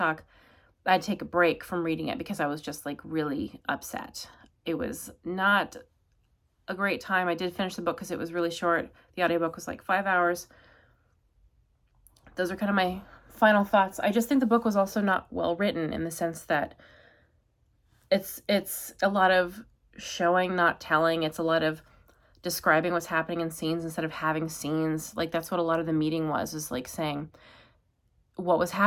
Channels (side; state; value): both; identical; correlation 1.00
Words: I'd take a break from reading it because I was just like really upset. It was not a great time. I did finish the book because it was really short. The audiobook was like 5 hours. Those are kind of my final thoughts. I just think the book was also not well written in the sense that it's a lot of showing, not telling. It's a lot of describing what's happening in scenes instead of having scenes. Like that's what a lot of the meeting was like saying what was